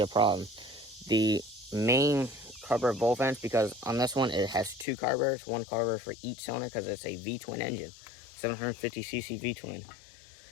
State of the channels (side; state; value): right; drops out; at 4.9 s